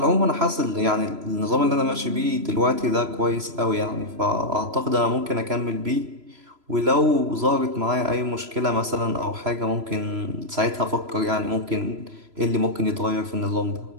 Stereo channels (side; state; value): left; late; 3.0 ms